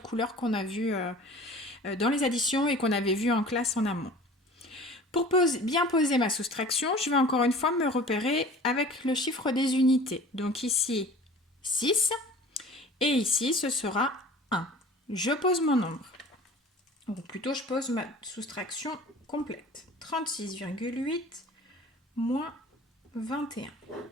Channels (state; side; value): normal; both; correlation 0.43